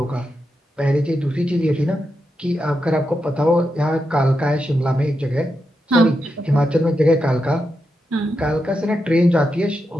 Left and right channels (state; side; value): normal; both; correlation 0.86